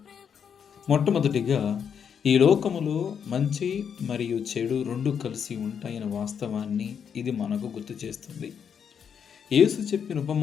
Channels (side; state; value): right; quieter; 7.5 dB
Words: మొట్టమొదటిగా, ఈ లోకములో మంచి మరియు చెడు రెండు కలిసి ఉంటాయన్న వాస్తవాన్ని ఇది మనకు గుర్తు చేస్తుంది. యేసు చెప్పిన